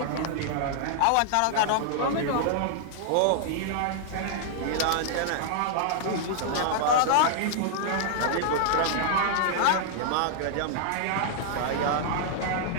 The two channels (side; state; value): both; different; correlation -0.01